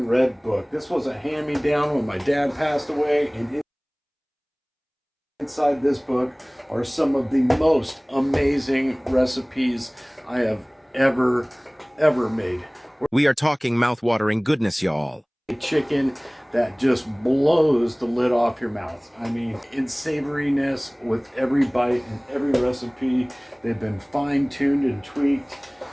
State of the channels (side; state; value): both; identical; correlation 1.00